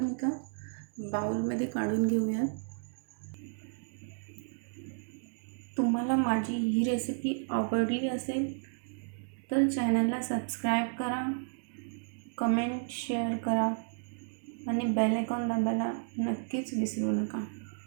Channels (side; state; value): left; silent; digital silence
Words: एका बाउलमध्ये काढून घेऊयात. तुम्हाला माझी ही रेसिपी आवडली असेल तर चॅनलला सबस्क्राईब करा, कमेंट शेअर करा आणि बेल आयकॉन दाबायला नक्कीच विसरू नका.